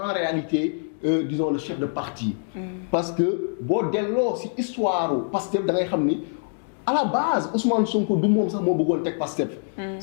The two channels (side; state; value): right; silent; digital silence